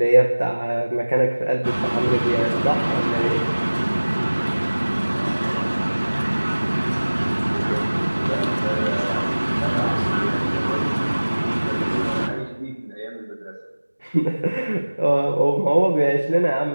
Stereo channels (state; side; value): inverted; both; correlation -1.00